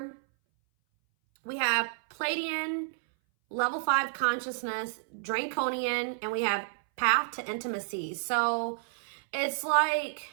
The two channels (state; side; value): silent; left; 58 dB below the other